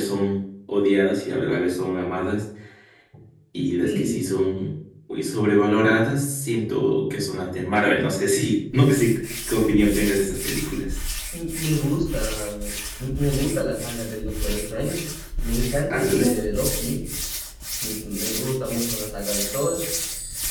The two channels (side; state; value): both; identical; correlation 1.00